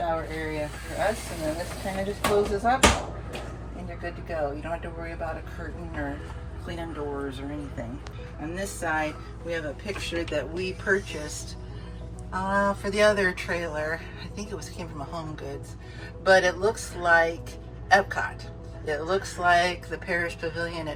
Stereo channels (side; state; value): both; identical; correlation 1.00